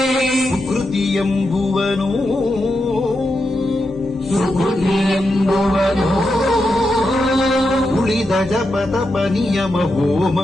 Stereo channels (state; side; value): normal; both; correlation 0.86